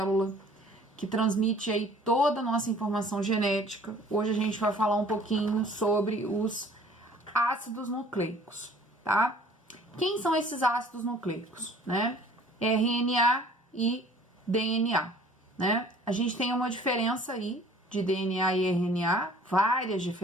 que transmite aí toda a nossa informação genética, hoje a gente vai falar um pouquinho sobre os ácidos nucleicos, tá? Quem são esses ácidos nucleicos, né? RNA e DNA, né? A gente tem uma diferença aí de DNA e RNA, várias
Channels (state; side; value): normal; both; correlation 0.52